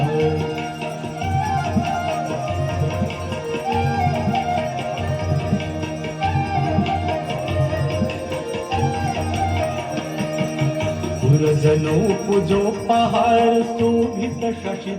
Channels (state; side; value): identical; both; correlation 1.00